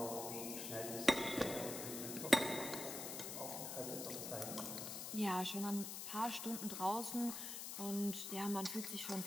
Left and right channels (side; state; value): left; noise; hiss, 5 dB below the sound